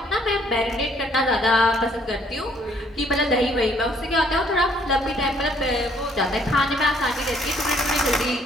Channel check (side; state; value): both; normal; correlation 0.64